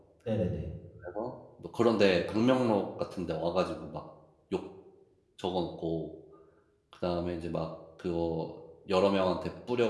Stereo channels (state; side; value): identical; both; correlation 1.00